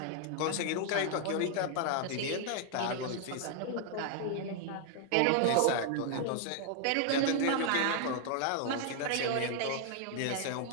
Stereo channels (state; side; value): different; both; correlation 0.00